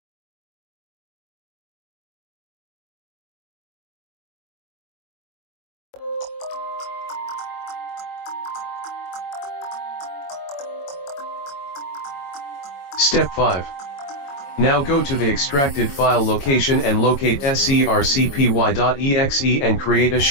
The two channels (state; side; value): late; right; 22 ms